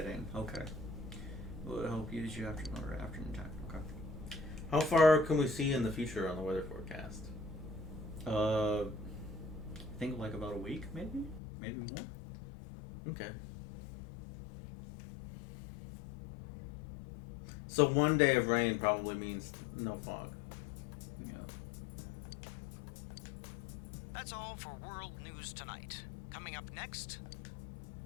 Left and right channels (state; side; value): drops out; right; at 11.4 s